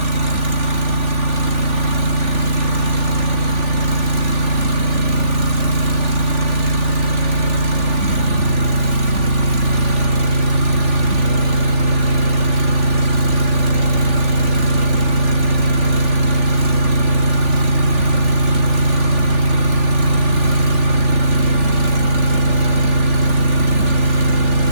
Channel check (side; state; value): left; late; 3.4 ms